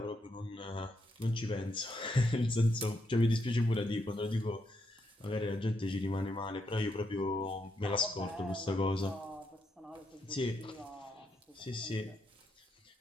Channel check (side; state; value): both; normal; correlation 0.79